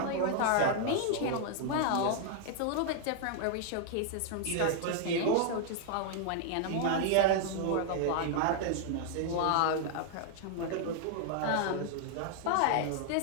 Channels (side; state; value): both; different; correlation -0.01